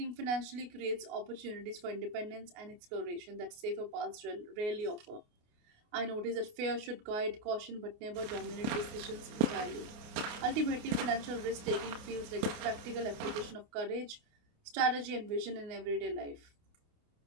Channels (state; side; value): late; left; 28 ms